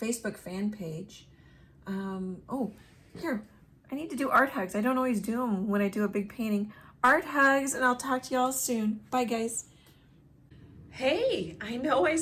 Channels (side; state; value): both; identical; correlation 1.00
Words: fan page. Oh, here, I need to do art hugs. I don't always do them when I do a big painting. Art hugs, and I'll talk to y'all soon. Bye, guys. Hey, I know I